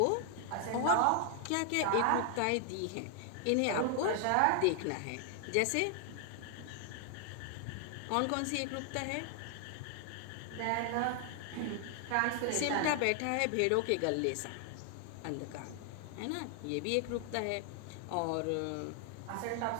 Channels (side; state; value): both; different; correlation 0.00